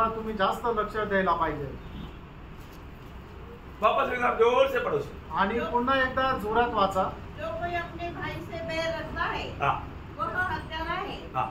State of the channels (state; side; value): identical; both; correlation 1.00